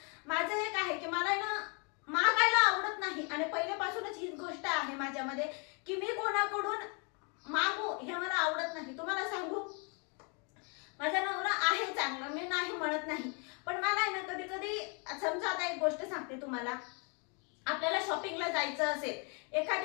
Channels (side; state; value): right; quieter; 35.7 dB